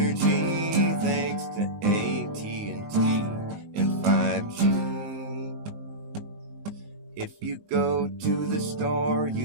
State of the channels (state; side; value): late; left; 18 ms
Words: thanks to AT&T and 5G. If you go to the store,